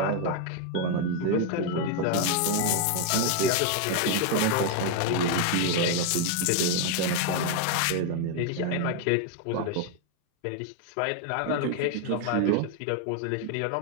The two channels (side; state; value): both; different; correlation 0.01